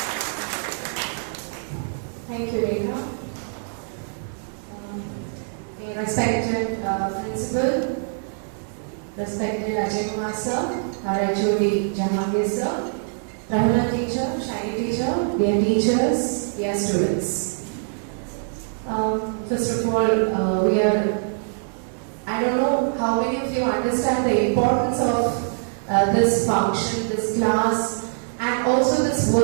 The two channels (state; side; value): silent; left; digital silence